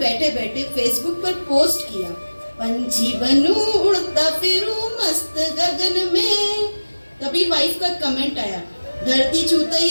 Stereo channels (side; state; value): both; inverted; correlation -1.00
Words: बैठे फेसबुक पर पोस्ट किया, पंछी बनूं उड़ता फिरूं मस्त गगन में। तभी वाइफ का कमेंट आया, धरती छूते